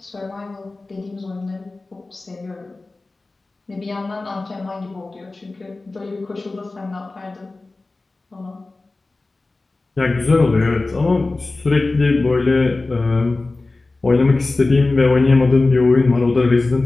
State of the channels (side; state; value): right; quieter; 3.3 dB